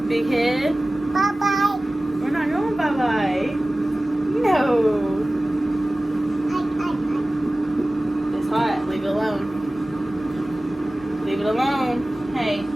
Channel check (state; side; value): normal; both; correlation 0.97